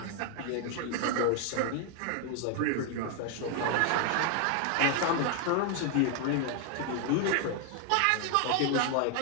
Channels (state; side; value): different; both; correlation 0.00